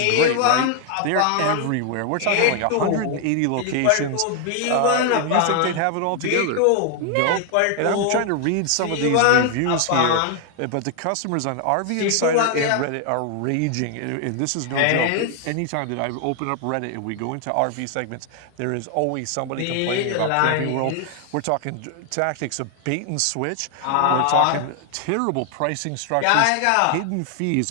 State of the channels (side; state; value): both; different; correlation 0.00